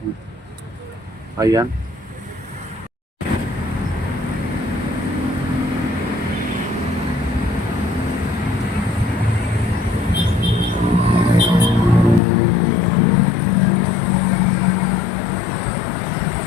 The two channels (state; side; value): drops out; right; at 12.2 s